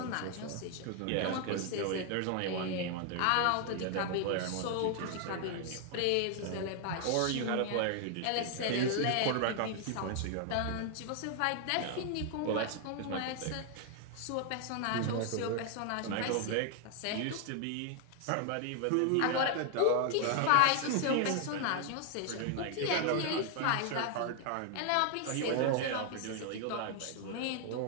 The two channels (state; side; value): different; both; correlation 0.00